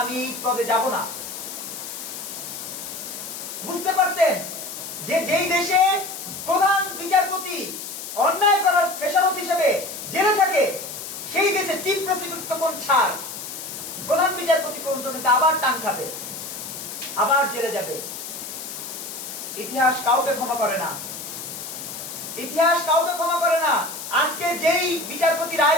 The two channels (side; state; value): left; noise; hiss, 9 dB below the sound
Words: আমি এই পদে যাব না। বুঝতে পারতেন যে যেই দেশে প্রধান বিচারপতি অন্যায় করার খেসারত হিসেবে জেলে থাকে, সেই দেশে চিফ প্রসিকিউটর তখন ছাড়, প্রধান বিচারপতি পর্যন্ত কিন্তু আবার টান খাবে, আবার জেলে যাবে। ইতিহাস কাউকে ক্ষমা করে না, ইতিহাস কাউকে ক্ষমা করে না। আজকে যেই বিচারপতি